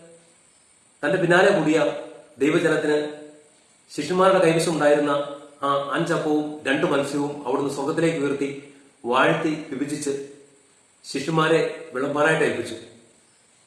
തന്റെ പിന്നാലെ കൂടിയ ദൈവജനത്തിന് ശിഷ്യന്മാരുടെ കൈവശം ഉണ്ടായിരുന്ന ആ 5 അപ്പവും 2 മത്സ്യവും അവിടുന്ന് സ്വർഗത്തിലേക്ക് ഉയർത്തി വാഴ്ത്തി വിഭജിച്ച് ശിഷ്യന്മാരെ വിളമ്പാനായിട്ട് ഏൽപ്പിച്ചു.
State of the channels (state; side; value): identical; both; correlation 1.00